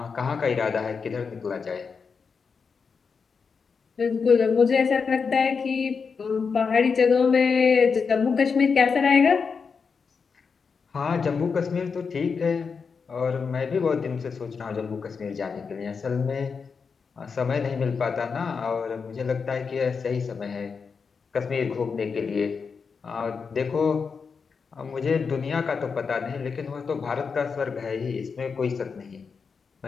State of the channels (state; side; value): quieter; right; 5.5 dB